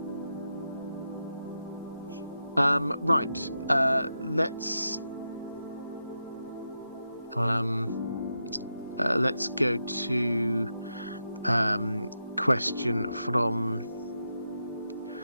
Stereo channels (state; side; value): inverted; both; correlation -0.87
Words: Right. Let's go to question from